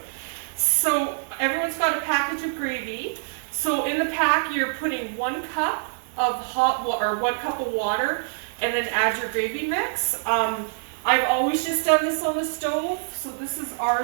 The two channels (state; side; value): silent; left; digital silence